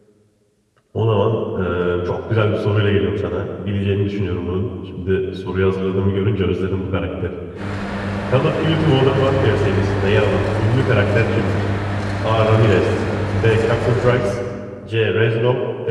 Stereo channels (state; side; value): identical; both; correlation 1.00